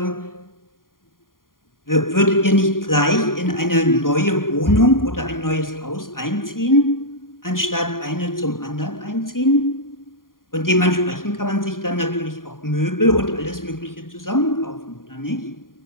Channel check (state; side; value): late; right; 0.91 ms